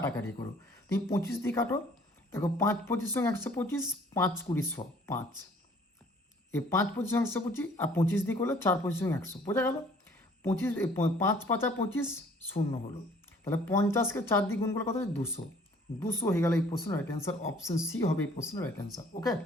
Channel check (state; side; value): normal; both; correlation 0.56